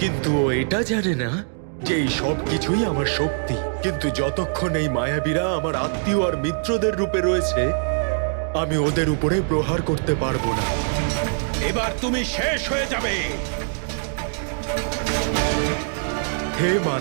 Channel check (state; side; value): silent; left; digital silence